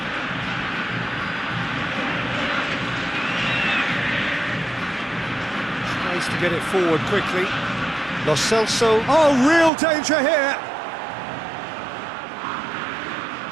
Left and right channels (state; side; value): drops out; left; at 9.7 s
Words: Tries to get it forward quickly. Lo Celso. Oh, real danger here.